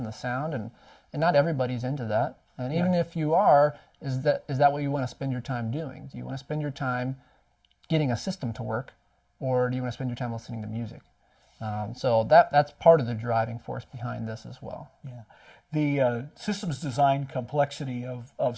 the sound. And not everybody's into that. And even if you are, is that what you want to spend your time doing? Do you want to spend your time getting a system to work, or do you want to spend your time listening to music? So that's part of the driving force behind this as well. Yeah. The systems design complexity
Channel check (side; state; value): both; identical; correlation 1.00